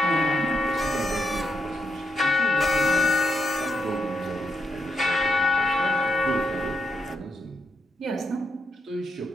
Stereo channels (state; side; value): normal; both; correlation 0.81